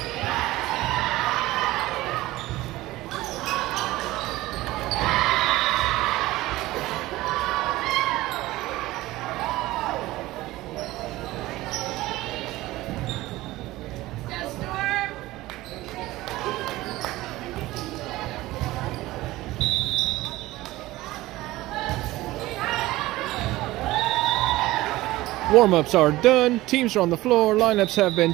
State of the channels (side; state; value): left; quieter; 17.8 dB